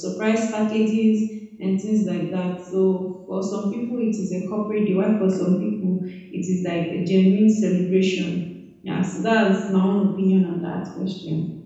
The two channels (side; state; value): both; identical; correlation 1.00